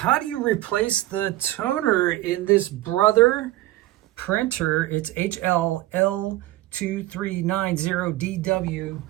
do you replace the toner in this Brother printer? It's HL-L2390DW.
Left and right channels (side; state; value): left; quieter; 16.3 dB